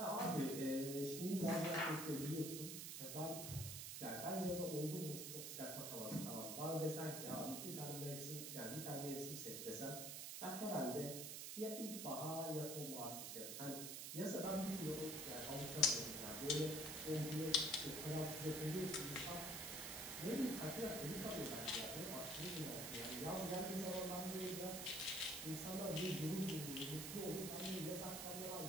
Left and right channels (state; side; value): noise; right; hiss, 5 dB below the sound